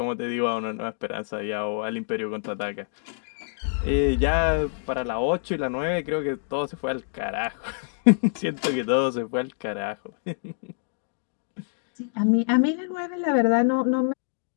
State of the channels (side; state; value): right; silent; digital silence